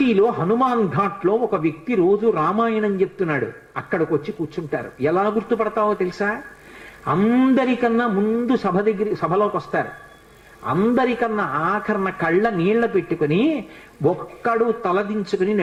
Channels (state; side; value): identical; both; correlation 1.00